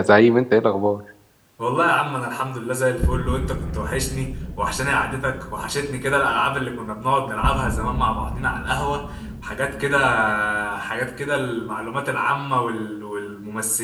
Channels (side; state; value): both; identical; correlation 1.00